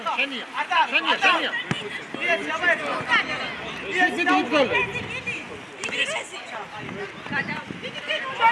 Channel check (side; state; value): both; identical; correlation 1.00